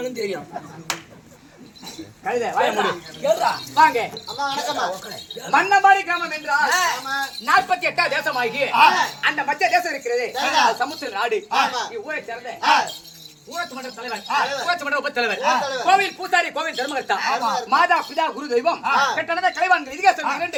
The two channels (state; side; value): identical; both; correlation 1.00